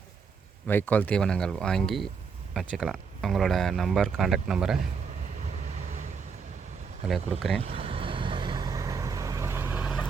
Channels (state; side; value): quieter; left; 5.7 dB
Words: வைக்கோல் தீவனங்கள் வாங்கி வச்சுக்கலாம். அவங்களோட நம்பர், கான்டாக்ட் நம்பரை அதில் கொடுக்குறேன்.